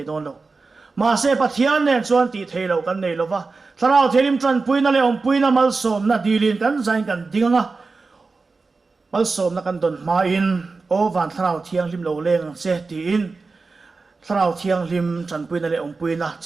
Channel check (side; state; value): left; quieter; 4.1 dB